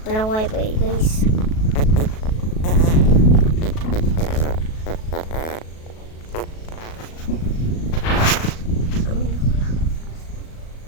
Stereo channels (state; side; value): late; right; 37 ms